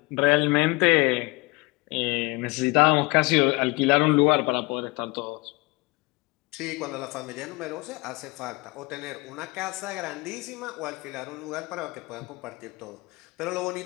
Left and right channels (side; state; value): right; quieter; 25.5 dB